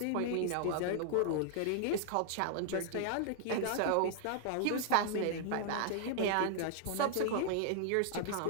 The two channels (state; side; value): different; both; correlation -0.01